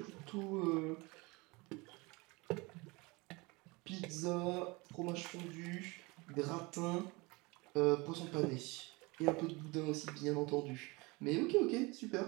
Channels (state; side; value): quieter; left; 25.2 dB